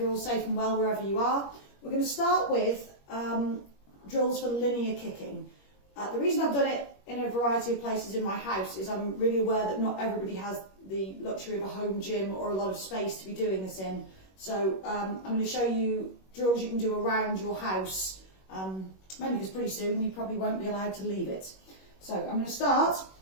all safe and well wherever you are. We're going to start with drills for linear kicking. The reason I've done it in a variety of places in my house is I'm really aware that not everybody has the luxury of a home gym or a lot of space to be doing this in. So I'm going to show you drills you can do around your house, mainly because pretty soon you probably won't be allowed to leave it. So I'm going to start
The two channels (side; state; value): right; late; 21 ms